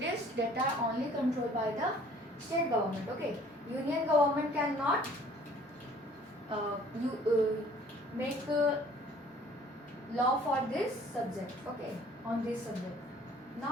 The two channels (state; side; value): normal; both; correlation 0.54